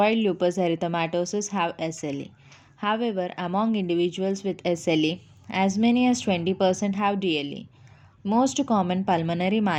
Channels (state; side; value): identical; both; correlation 1.00